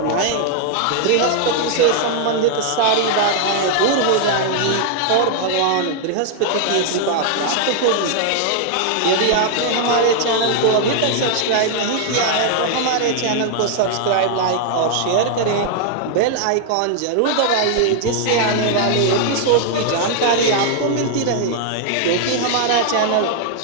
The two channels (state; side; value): different; both; correlation -0.01